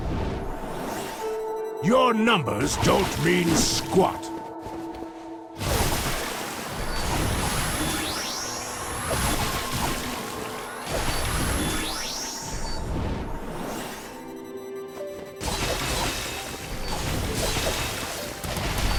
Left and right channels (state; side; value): identical; both; correlation 1.00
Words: Your numbers don't mean squat.